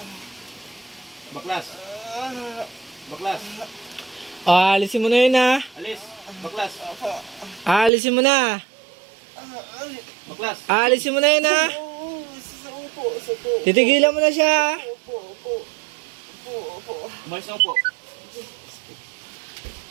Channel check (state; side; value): drops out; left; at 7.9 s